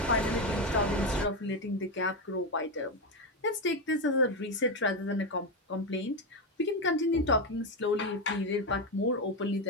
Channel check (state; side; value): normal; both; correlation 0.10